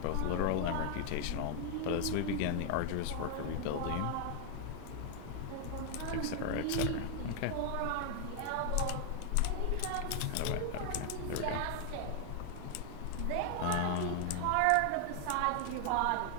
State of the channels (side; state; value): both; different; correlation 0.00